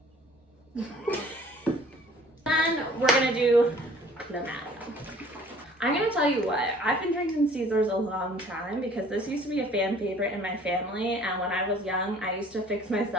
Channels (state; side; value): normal; both; correlation 0.53